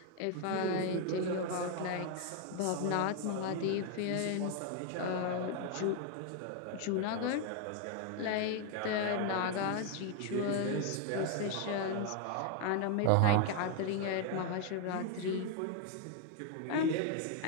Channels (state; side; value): different; both; correlation 0.01